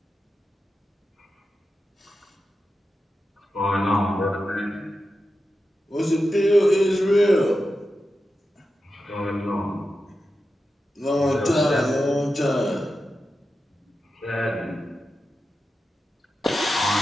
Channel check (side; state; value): both; normal; correlation 0.91